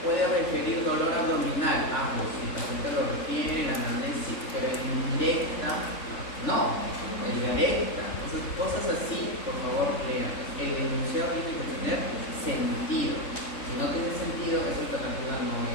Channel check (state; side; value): late; right; 3.7 ms